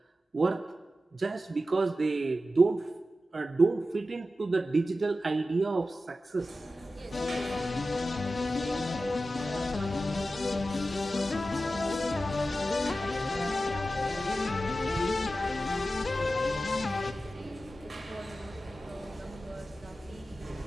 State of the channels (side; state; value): both; normal; correlation 0.93